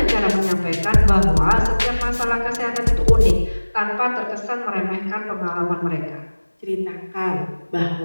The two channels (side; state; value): both; inverted; correlation -1.00